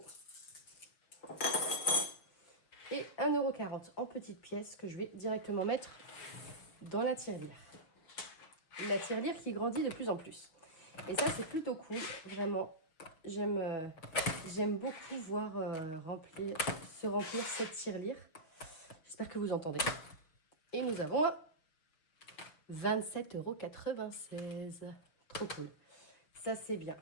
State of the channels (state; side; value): late; right; 6.4 ms